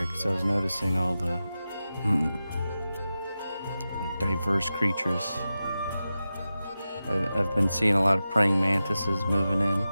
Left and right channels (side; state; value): both; inverted; correlation -0.93